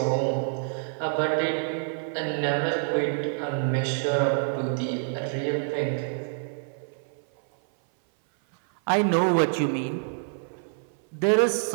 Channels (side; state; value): left; silent; 58 dB below the other